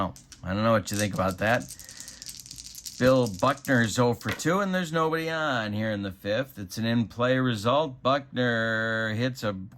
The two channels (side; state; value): both; identical; correlation 1.00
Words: I don't know what you think about that. Bill Buckner's 0 for 2, and there's nobody on here in the 5th. It's an in-play result. Buckner hits a